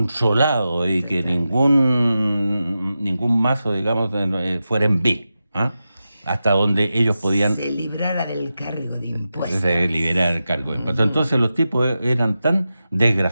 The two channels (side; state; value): both; inverted; correlation -0.91